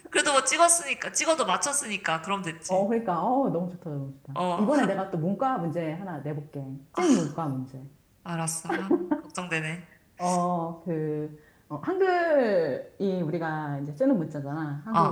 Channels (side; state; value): both; identical; correlation 1.00